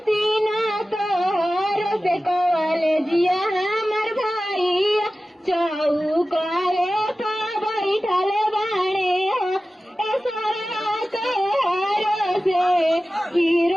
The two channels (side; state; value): both; normal; correlation 0.95